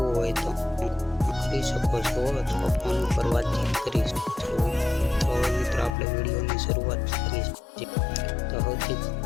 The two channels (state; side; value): drops out; right; at 6.0 s